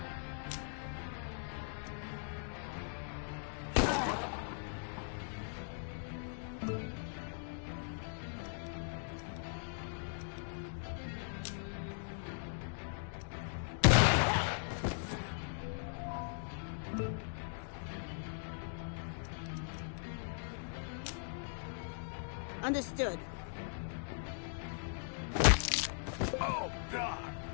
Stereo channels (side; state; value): right; silent; digital silence